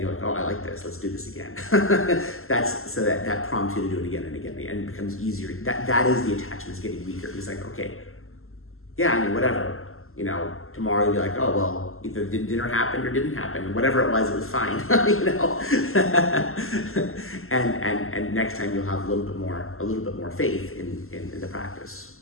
like, oh, I like this. Let's do this again. That prompts you to do it again and again, and it becomes easier. That is the attachments getting weaker. It's like, okay, yeah, I mean, whatever. You know, tomorrow you'll be like, oh well, either dinner happened or didn't happen. Whatever it was fine. You know, and next time you'll have a little bit more faith in the practice.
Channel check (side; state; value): right; late; 0.62 ms